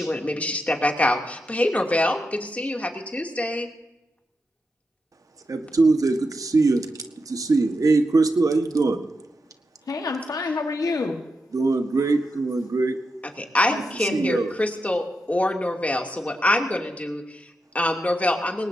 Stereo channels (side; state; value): both; normal; correlation 0.86